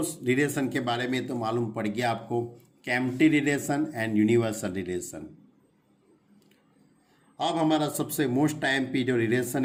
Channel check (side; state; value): both; identical; correlation 1.00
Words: रिलेशन के बारे में तो मालूम पड़ गया आपको, empty relation and universal relation. अब हमारा सबसे मोस्ट टाइम जो रिलेशन